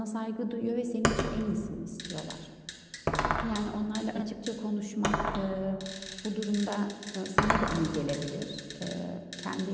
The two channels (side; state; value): both; identical; correlation 1.00